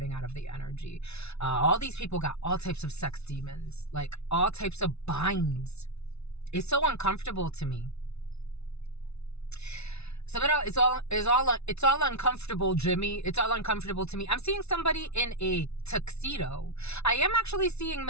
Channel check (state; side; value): late; right; 0.80 ms